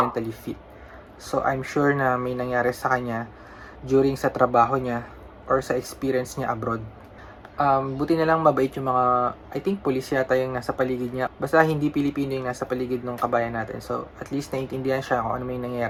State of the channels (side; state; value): both; identical; correlation 1.00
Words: fit. So I'm sure na may nangyari sa kanya during sa trabaho niya or sa experience niya abroad. Buti na lang mabait yung mga, I think police yata yung nasa paligid niya. Basta hindi Pilipino yung nasa paligid ng Kabayan natin. So at least naiintindihan siya kung ano may